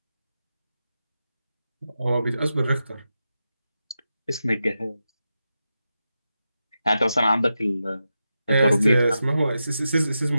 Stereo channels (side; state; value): both; inverted; correlation -0.90